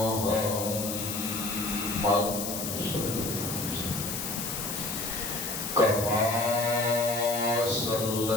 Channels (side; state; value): left; noise; hiss, 4 dB below the sound